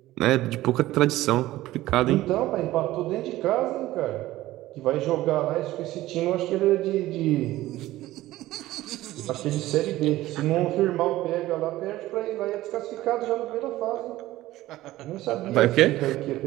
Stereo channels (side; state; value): left; quieter; 16.2 dB